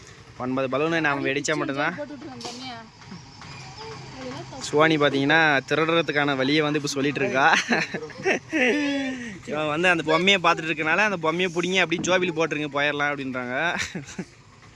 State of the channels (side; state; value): both; identical; correlation 1.00